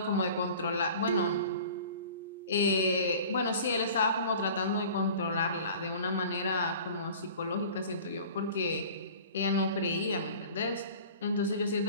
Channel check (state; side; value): inverted; both; correlation -0.43